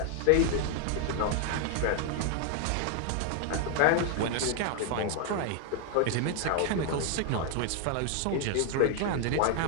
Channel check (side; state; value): both; different; correlation 0.00